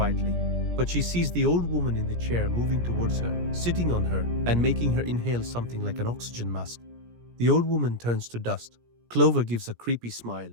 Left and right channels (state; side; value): late; left; 17 ms